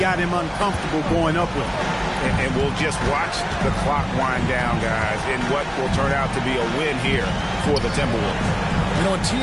him uncomfortable going up with it. And we'll just watch the clock wind down, guys, in what will turn out to be a win here for the Timberwolves. You know, a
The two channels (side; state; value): both; identical; correlation 1.00